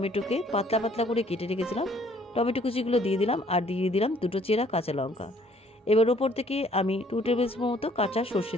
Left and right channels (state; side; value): normal; both; correlation 0.61